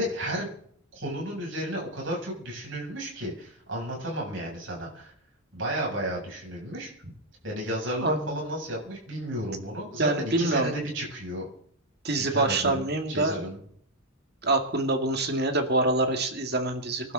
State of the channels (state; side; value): normal; both; correlation -0.01